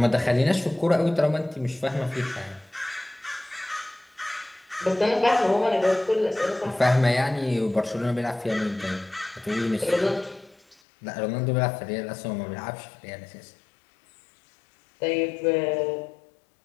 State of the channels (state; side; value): drops out; right; at 10.8 s